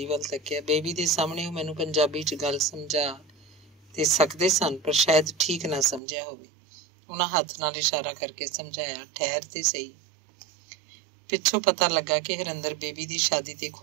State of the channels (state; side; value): drops out; left; at 6.0 s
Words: ਵੱਲ ਤੱਕਿਆ। ਬੇਬੀ ਦੇ ਸਾਹਮਣੇ ਉਹ ਮੈਨੂੰ ਪੰਜਾਬੀ 'ਚ ਗੱਲ ਸਮਝਾ ਤੇ ਸਕਦੇ ਸਨ, ਪਰ ਸ਼ਾਇਦ ਠੀਕ ਨਾ ਸਮਝਿਆ ਹੋਵੇ। ਉਹਨਾਂ ਹੱਥ ਨਾਲ ਇਸ਼ਾਰਾ ਕਰਕੇ ਸਮਝਾਇਆ, ਠਹਿਰ ਤੇ ਸਹੀ। ਪਿੱਛੋਂ ਪਤਾ ਲੱਗਾ ਕਿ ਹਰਿੰਦਰ ਬੇਬੀ ਦੀ ਸ਼ਾਦੀ ਤੇ